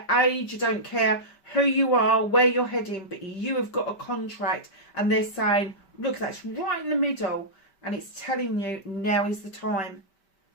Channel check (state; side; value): late; right; 5.2 ms